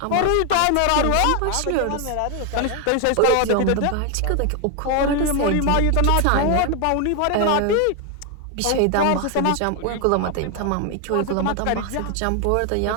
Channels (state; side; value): different; both; correlation 0.01